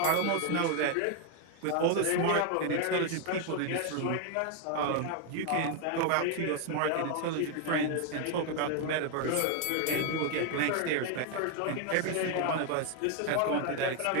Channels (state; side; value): different; both; correlation 0.01